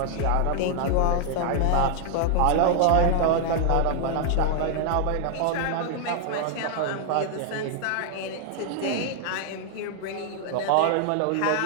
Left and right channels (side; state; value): both; different; correlation 0.00